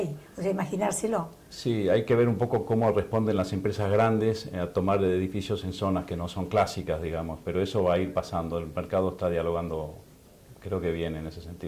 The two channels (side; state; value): both; identical; correlation 1.00